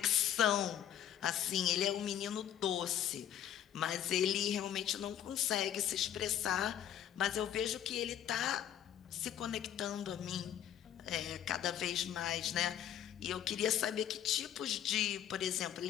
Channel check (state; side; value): quieter; right; 10.5 dB